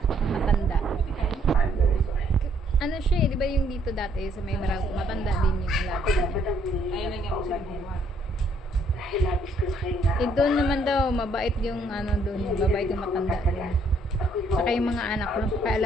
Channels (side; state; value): both; normal; correlation 0.67